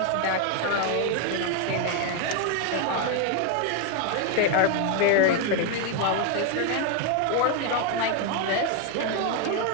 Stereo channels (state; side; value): different; both; correlation 0.01